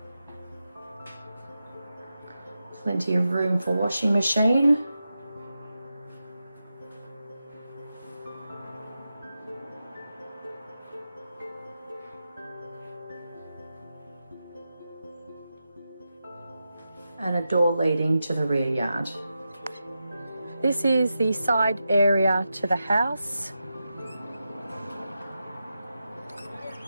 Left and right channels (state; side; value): inverted; both; correlation -0.90